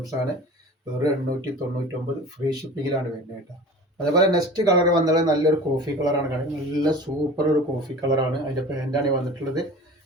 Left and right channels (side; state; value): both; normal; correlation 0.38